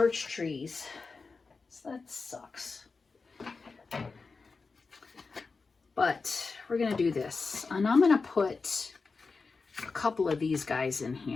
trees. So that sucks. But we're going to do this. And I'm going to put a couple of these guys in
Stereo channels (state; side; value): quieter; right; 4.4 dB